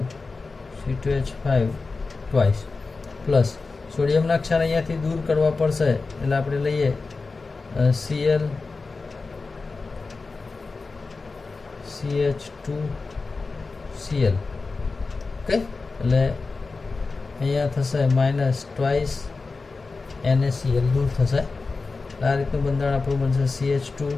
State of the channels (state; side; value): quieter; right; 4.0 dB